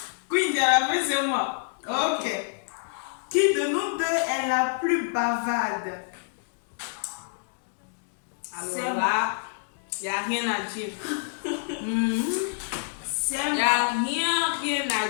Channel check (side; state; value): right; silent; digital silence